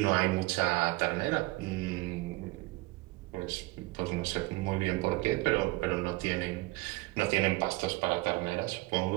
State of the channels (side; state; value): left; quieter; 21.6 dB